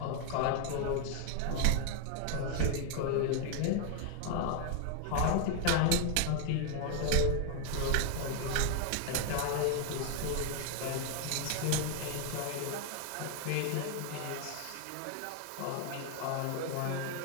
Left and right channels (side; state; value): both; different; correlation 0.00